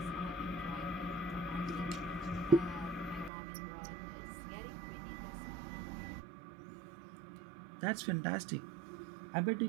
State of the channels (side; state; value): left; drops out; at 3.3 s